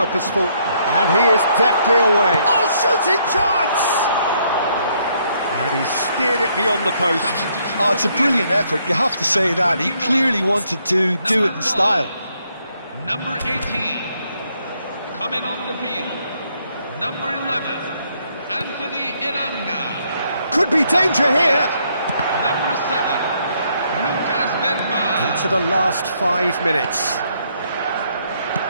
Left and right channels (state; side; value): inverted; both; correlation -0.71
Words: And he is deftly away. Oh, shooting chance! And he steered it beyond the post. Oh, it's a brilliant effort, you have to say that. He clearly wanted to do it in style. Number 18, coming on the field. Number 11, Anthony Elanga. Could be danger here. Number 7, Lucas Bergman. Into the last 5 minutes.